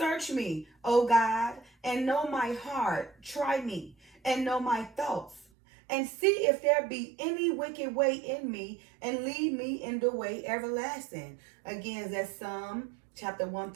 me, O God, and know my heart. Try me and know my thoughts. And see if there be any wicked way in me, and lead me in the way everlasting. Again, that's Psalm chapter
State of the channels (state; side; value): drops out; left; at 5.5 s